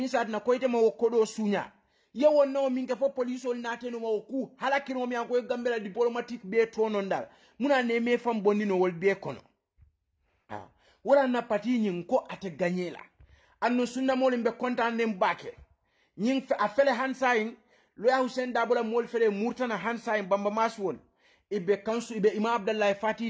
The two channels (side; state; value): both; identical; correlation 1.00